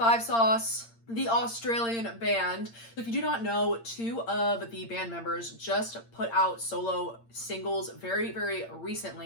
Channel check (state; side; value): late; right; 8.7 ms